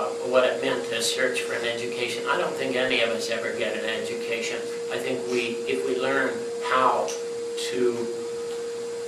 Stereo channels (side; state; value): both; identical; correlation 1.00